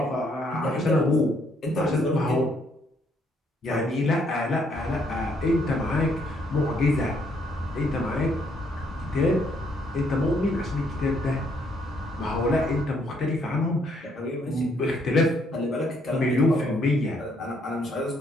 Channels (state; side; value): normal; both; correlation 0.70